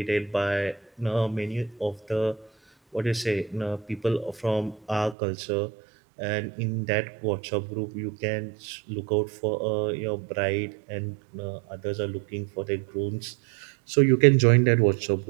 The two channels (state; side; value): drops out; left; at 5.2 s